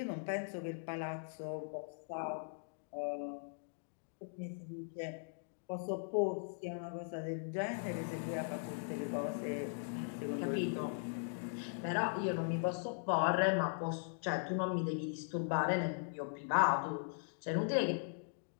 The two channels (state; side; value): silent; right; digital silence